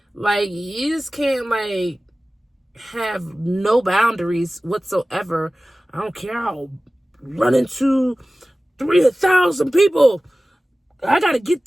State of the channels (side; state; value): both; normal; correlation 0.97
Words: Like, you just can't like have no boundaries whatsoever. I don't care, I'll run into 3,000 people. I gotta get